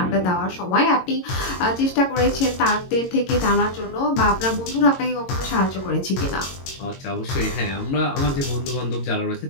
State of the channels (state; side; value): late; right; 22 ms